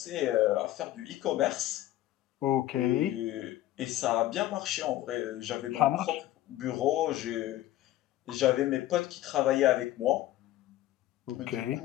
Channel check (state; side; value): quieter; right; 14.6 dB